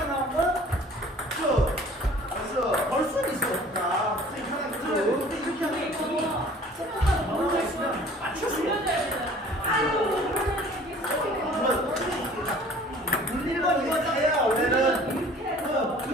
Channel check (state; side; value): normal; both; correlation 0.50